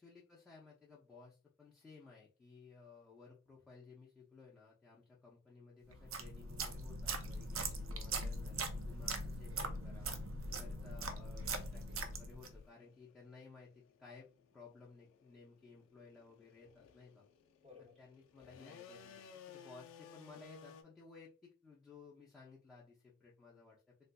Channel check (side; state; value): both; normal; correlation 0.39